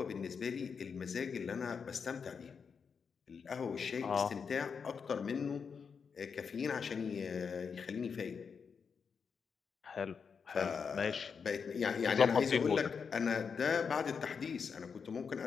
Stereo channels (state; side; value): quieter; right; 6.0 dB